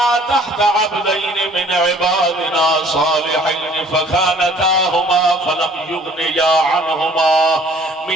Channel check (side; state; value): both; normal; correlation 0.55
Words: تحت عبدين من عبادنا صالحين فخانتاهما فلم يغنيا عنهما